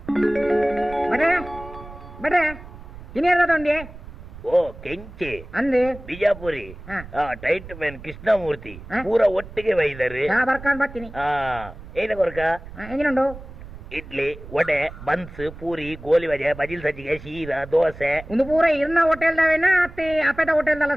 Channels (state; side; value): noise; right; rumble, 15 dB below the sound